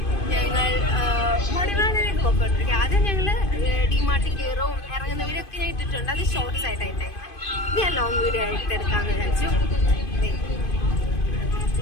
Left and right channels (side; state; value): right; late; 2.5 ms